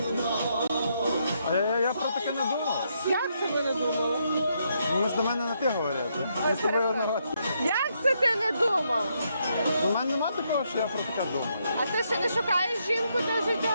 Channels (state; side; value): inverted; both; correlation -0.77